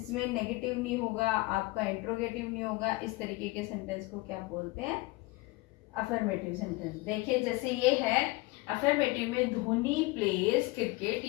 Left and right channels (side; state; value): right; quieter; 22.8 dB